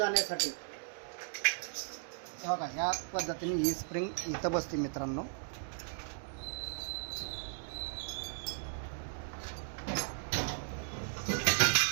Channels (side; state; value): left; silent; digital silence